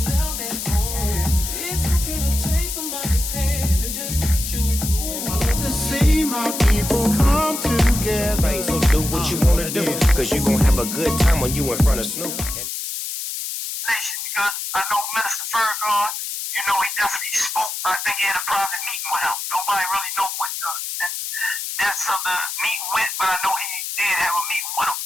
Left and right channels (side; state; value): left; noise; hiss, 5 dB below the sound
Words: cause you gon' have a good time when you in front of Snoop. Because I know Minister Farrakhan, you know, he definitely spoke. I think he had a private meeting with him. Nobody really know what the depths of the meeting went, but I know he did have a meeting with him.